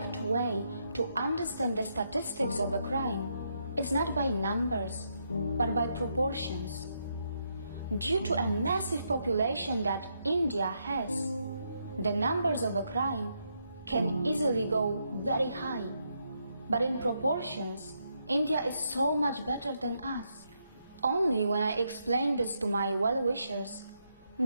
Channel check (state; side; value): inverted; both; correlation -0.79